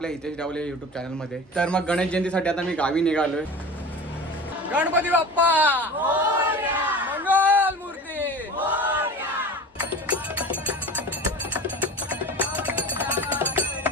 हितेश डावले यूट्यूब चॅनलमध्ये. तर मग गणेश जयंतीसाठी आता मी गावी निघालोय. गणपती बाप्पा मंगल मूर्ती.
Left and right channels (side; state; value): both; normal; correlation 0.35